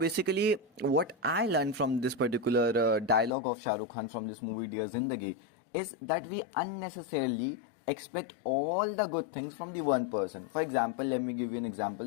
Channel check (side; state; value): right; drops out; at 3.3 s